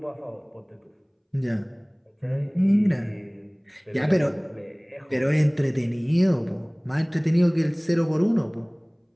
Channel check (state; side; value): identical; both; correlation 1.00